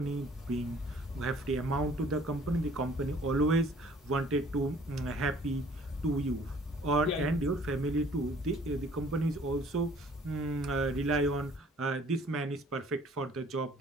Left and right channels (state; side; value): normal; both; correlation 0.55